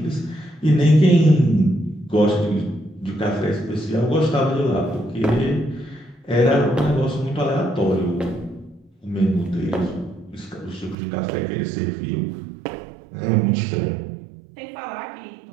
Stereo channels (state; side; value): drops out; left; at 11.0 s